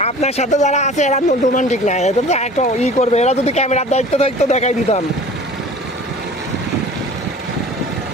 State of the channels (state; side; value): normal; both; correlation 0.43